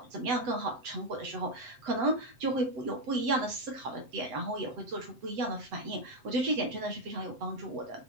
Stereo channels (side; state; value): left; late; 7.8 ms